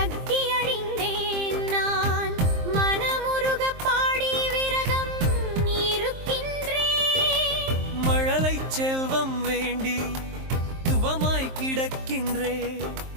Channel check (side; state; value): left; late; 23 ms